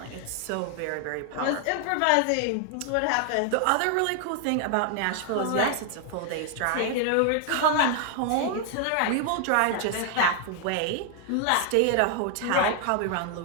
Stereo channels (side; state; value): both; different; correlation 0.00